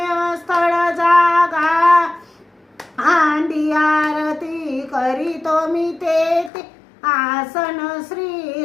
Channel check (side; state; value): right; drops out; at 6.5 s